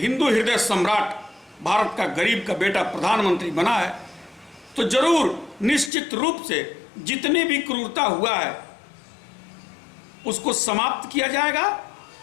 हृदय सम्राट, भारत का गरीब का बेटा प्रधानमंत्री बना है। तो जरूर निश्चित रूप से जितने भी क्रूरता हुआ है उसको समाप्त किया जाएगा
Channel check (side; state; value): right; drops out; at 5.9 s